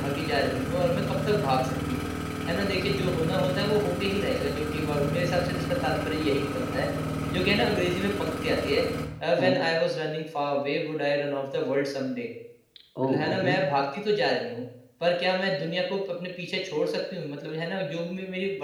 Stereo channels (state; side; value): identical; both; correlation 1.00